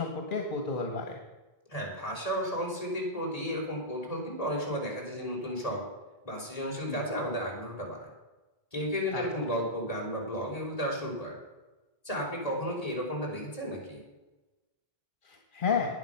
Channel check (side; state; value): right; late; 1.7 ms